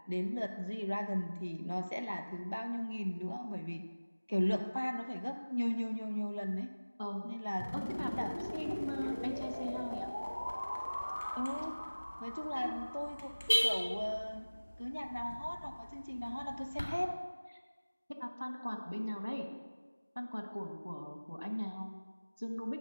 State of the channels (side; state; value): both; inverted; correlation -1.00